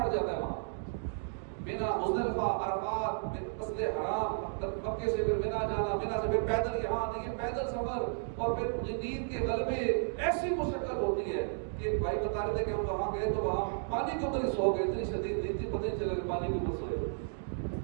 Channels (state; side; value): silent; left; digital silence